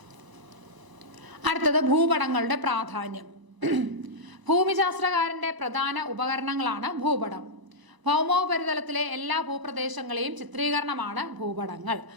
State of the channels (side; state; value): left; late; 1.0 ms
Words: അടുത്തത് ഭൂപടങ്ങളുടെ പ്രാധാന്യം. ഭൂമിശാസ്ത്രകാരന്റെ പ്രധാന ഉപകരണങ്ങളാണ് ഭൂപടം. ഭൗമോപരിതലത്തിലെ എല്ലാ ഭൂപ്രദേശങ്ങളെയും ചിത്രീകരണമാണ് ഭൂപടങ്ങൾ.